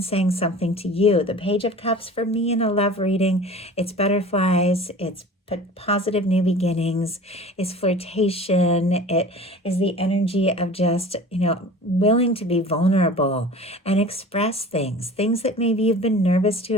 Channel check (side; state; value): both; normal; correlation 0.41